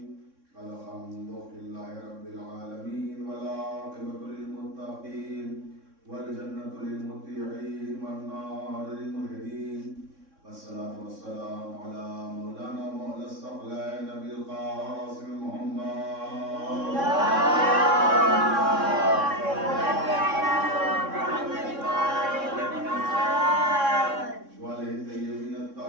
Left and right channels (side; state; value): left; late; 3.6 ms